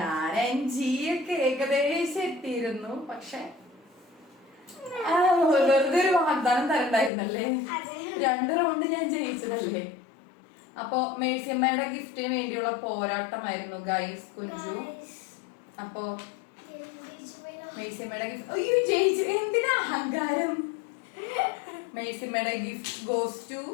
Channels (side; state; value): right; drops out; at 7.1 s